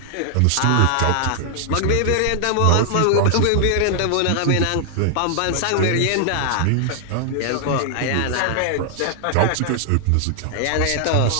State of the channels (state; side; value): different; both; correlation 0.00